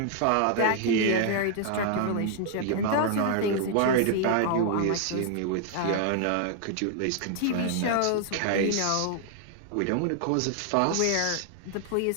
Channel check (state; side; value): different; both; correlation 0.00